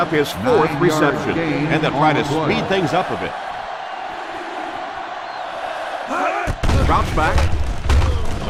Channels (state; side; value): identical; both; correlation 1.00